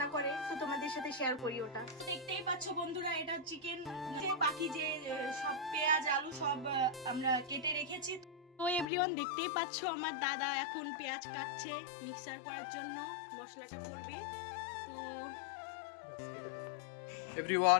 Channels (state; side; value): drops out; right; at 8.8 s